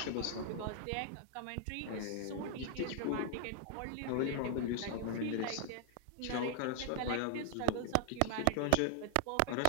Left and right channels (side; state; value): both; different; correlation 0.00